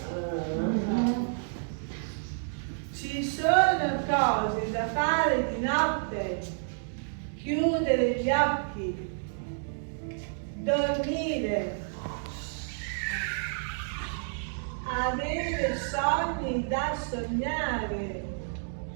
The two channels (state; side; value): silent; left; digital silence